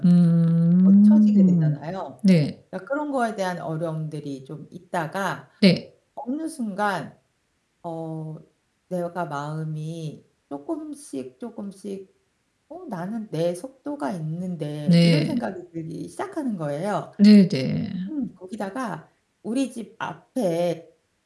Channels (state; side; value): identical; both; correlation 1.00